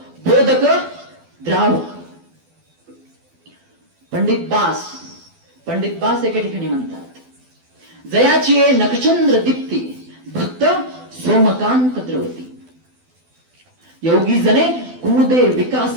बोधक, द्रावक. पंडित बास एके ठिकाणी म्हणतात, जयाची नखचंद्र दीप्ती, भक्त सोमकांत द्रवती, योगी जने कुमुदे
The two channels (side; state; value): left; late; 12 ms